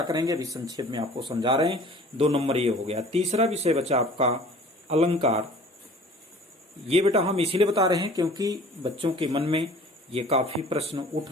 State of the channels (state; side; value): normal; both; correlation 0.47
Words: करेंगे, अभी संक्षेप में आपको समझा रहे हैं। 2 नंबर ये हो गया। तीसरा विषय बचा आपका अलंकार। ये बेटा हम इसीलिए बता रहे हैं क्योंकि बच्चों के मन में ये काफी प्रश्न उठ